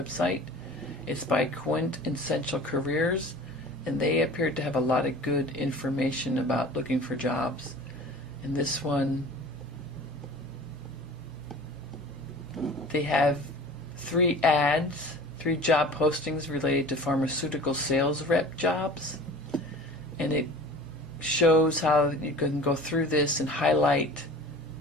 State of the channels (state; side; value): normal; both; correlation 0.41